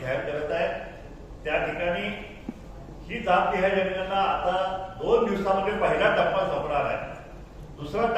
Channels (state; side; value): identical; both; correlation 1.00